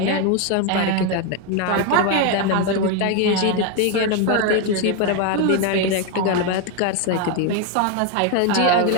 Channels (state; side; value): different; both; correlation 0.02